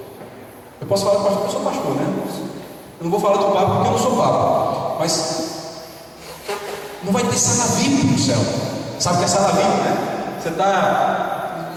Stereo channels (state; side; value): identical; both; correlation 1.00